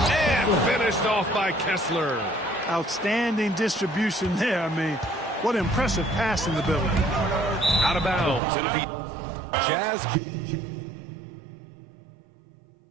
finished off by Kessler. Outstanding distribution there. I mean, what impressive passing ability. Out of bounds. It'll be Jazz.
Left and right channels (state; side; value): drops out; left; at 8.4 s